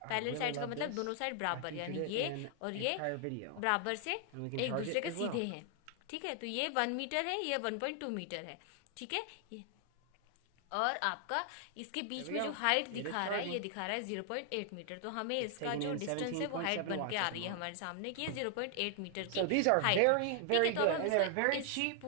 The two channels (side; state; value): both; different; correlation 0.00